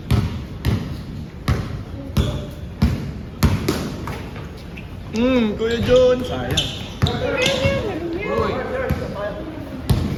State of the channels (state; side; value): identical; both; correlation 1.00